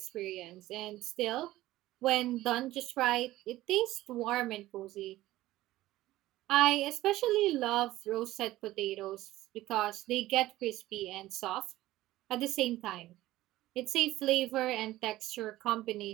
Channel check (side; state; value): left; quieter; 16.3 dB